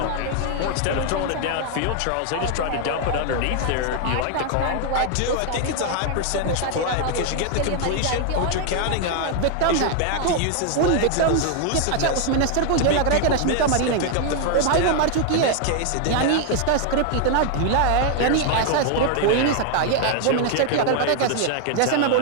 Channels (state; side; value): different; both; correlation 0.00